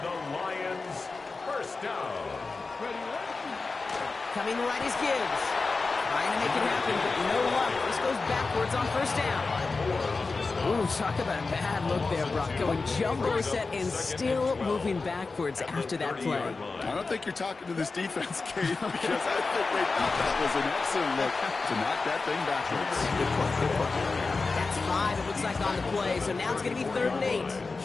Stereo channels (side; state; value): right; quieter; 4.0 dB